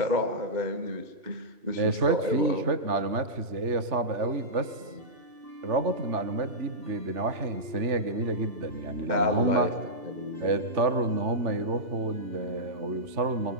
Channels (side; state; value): left; late; 3.4 ms